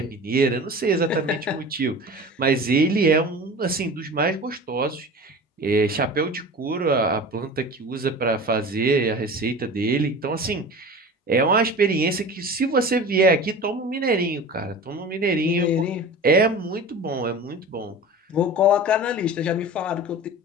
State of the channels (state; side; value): normal; both; correlation 0.35